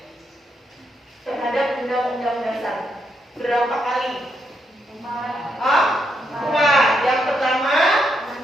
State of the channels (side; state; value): both; normal; correlation 0.80